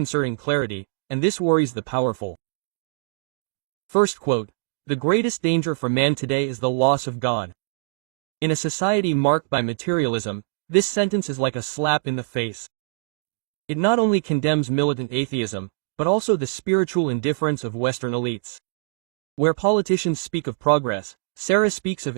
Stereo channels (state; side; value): silent; left; 63 dB below the other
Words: clarity, and this worries the powerful. First quote, "The greatest danger for man today is the loss of God." In a society marked by materialism, this sentence is like a slap in the face. It not only condemns militant atheism, but also the spiritual indifference of Western elites. Where politicians speak of progress, Sarah speaks of